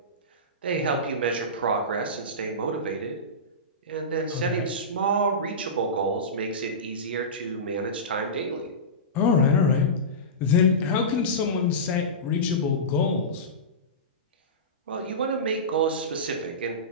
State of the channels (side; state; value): both; normal; correlation -0.20